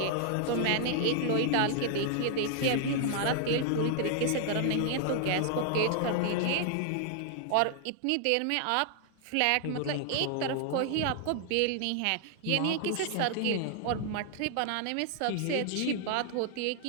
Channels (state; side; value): different; both; correlation 0.00